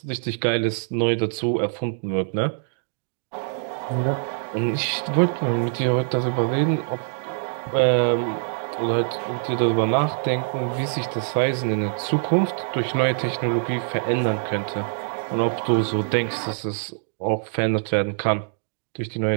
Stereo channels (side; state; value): left; silent; digital silence